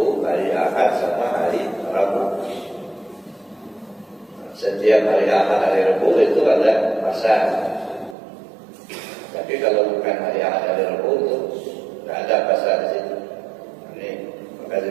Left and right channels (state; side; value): drops out; left; at 8.2 s